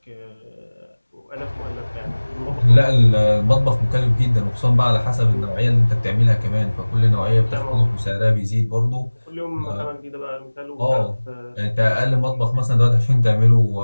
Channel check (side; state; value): both; inverted; correlation -1.00